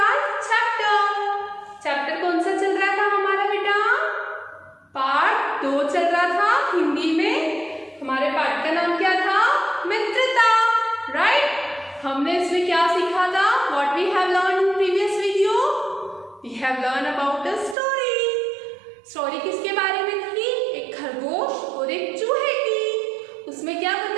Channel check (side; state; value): left; drops out; at 17.8 s